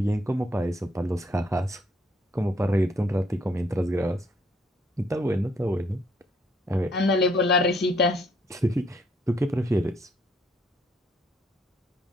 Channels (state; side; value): normal; both; correlation 0.68